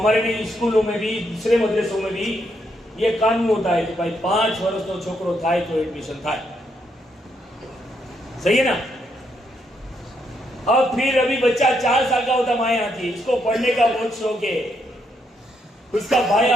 نہیں، اسکولوں میں بھی دوسرے مدرسوں میں بھی یہ قانون ہوتا ہے کہ بھائی 5 ورس تو چھوکرو تھائے تو ایڈمیشن تھائے. صحیح ہے نا؟ اب پھر ابھی بچہ 4 سال کا ہوتا مائیں آتی، اس کو پڑھنے کا بہت شوق ہے، اس کا بھائی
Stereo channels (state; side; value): normal; both; correlation 0.77